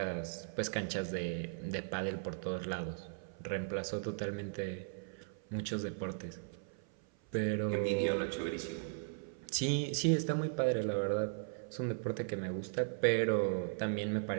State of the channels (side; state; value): left; silent; 53 dB below the other